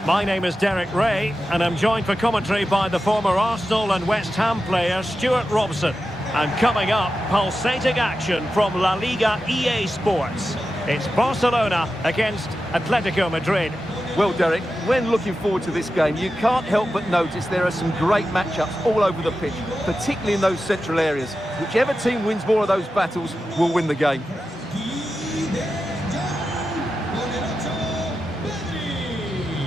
My name is Derek Ray, and I'm joined for commentary by the former Arsenal and West Ham player Stuart Robson. And coming up, pulsating action from La Liga EA Sports. It's Barcelona against Atletico Madrid. Well, Derek, when looking forward to this game, you can't help but notice there are some great matchups all over the pitch, particularly in those central areas. Whichever team wins more of those battles will win the game.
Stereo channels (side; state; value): both; normal; correlation 0.91